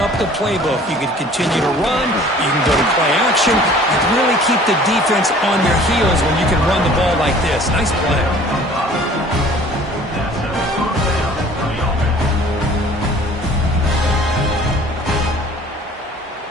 the playbook. You can continue to run, you can go to play action, and really keep the defense on their heels when you can run the ball like this. Nice play.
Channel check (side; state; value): both; normal; correlation 0.50